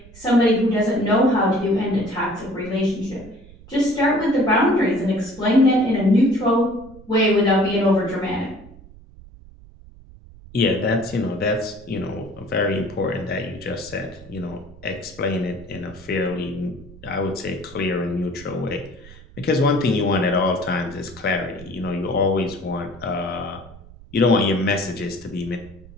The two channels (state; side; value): noise; right; rumble, 20 dB below the sound